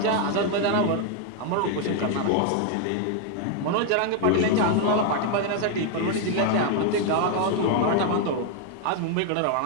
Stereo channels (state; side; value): different; both; correlation 0.00